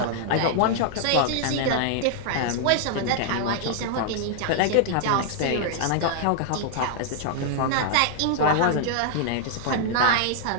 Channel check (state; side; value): different; both; correlation -0.01